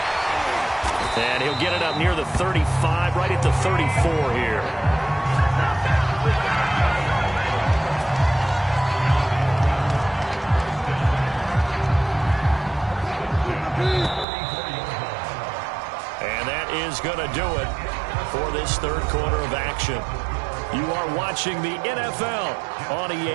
And he'll get it up near the 35, right at the 34 here. And that is going to do it for this third quarter of action. You are watching the NFL on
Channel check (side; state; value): left; drops out; at 14.2 s